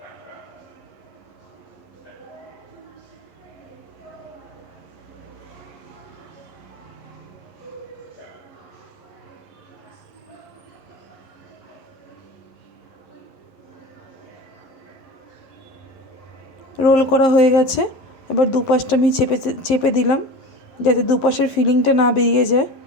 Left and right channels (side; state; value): right; late; 11 ms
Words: রোল করা হয়ে গেছে। এবার দুপাশটা আমি চেপে চেপে দিলাম যাতে দুপাশের ফিলিংটা না বেরিয়ে যায়।